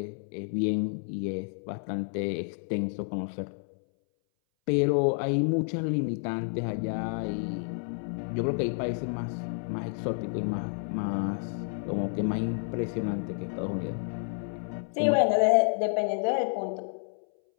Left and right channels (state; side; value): silent; right; 58 dB below the other